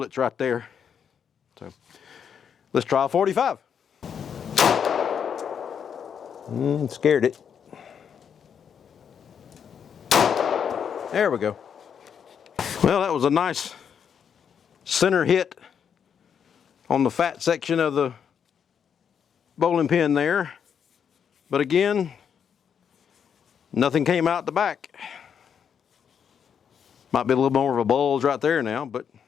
right there. So let's try a 45. Scared it. There we go. Well, that was a nice center hit on the fat section of the bowling pin there. But again, nothing came out the back. Might be a little more of a bulge right there now, but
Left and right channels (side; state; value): right; quieter; 7.6 dB